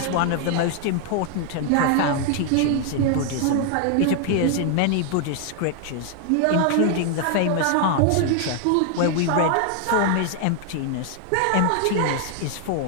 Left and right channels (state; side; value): different; both; correlation 0.00